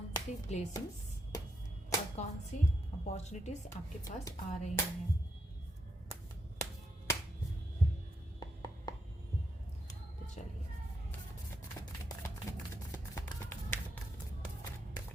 सी ब्लेसिंग्स और कौन सी अपॉर्चुनिटीज आपके पास आ रही हैं। तो चलिए,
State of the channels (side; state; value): both; normal; correlation 0.80